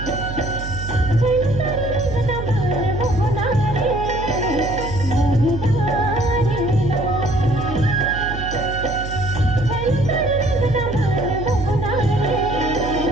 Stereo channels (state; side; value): noise; right; hum, 8 dB below the sound